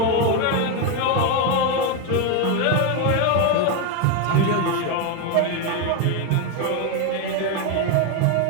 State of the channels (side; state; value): both; different; correlation 0.02